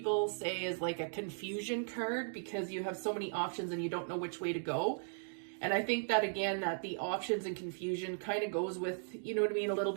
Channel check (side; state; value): left; silent; digital silence